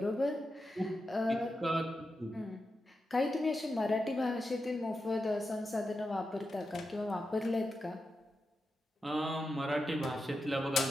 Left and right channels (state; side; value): normal; both; correlation 0.89